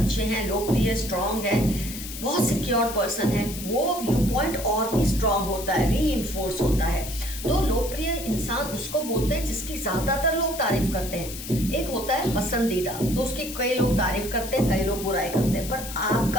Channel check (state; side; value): noise; left; hiss, 10 dB below the sound